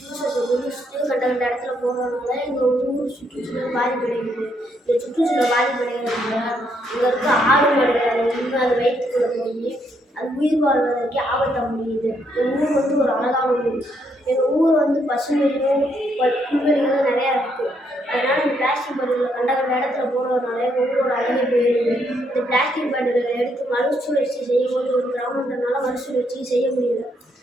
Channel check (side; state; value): both; normal; correlation 0.74